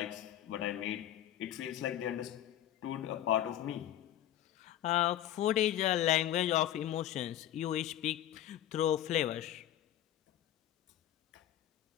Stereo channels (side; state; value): right; quieter; 12.1 dB